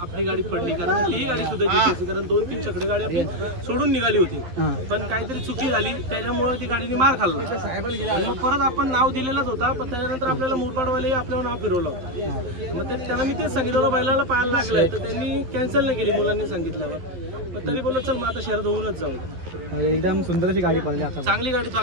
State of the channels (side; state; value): left; late; 12 ms